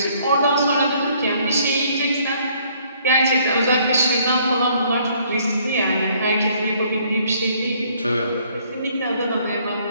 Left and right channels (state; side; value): inverted; both; correlation -0.63